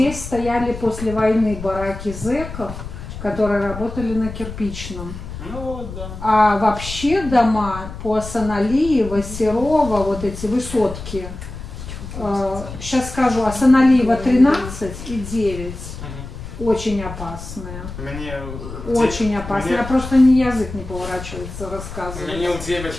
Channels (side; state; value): left; noise; rumble, 10 dB below the sound